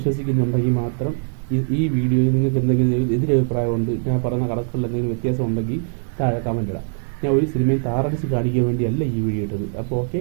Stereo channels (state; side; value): silent; left; 65 dB below the other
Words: മാത്രം ഈ വീഡിയോയിൽ നിങ്ങൾക്ക് എന്തെങ്കിലും എതിരഭിപ്രായമുണ്ട്, ഞാൻ പറയുന്ന കണക്കുകളിൽ എന്തെങ്കിലും വ്യത്യാസം ഉണ്ടെങ്കിൽ താഴെ കമൻറ്റ് ഇടാം. ഞാൻ ഒരു സിനിമയും താറടിച്ച് കാണിക്കാൻ വേണ്ടിയല്ല ഈ വീഡിയോ ഇട്ടത്. അപ്പോൾ ഓക്കെ,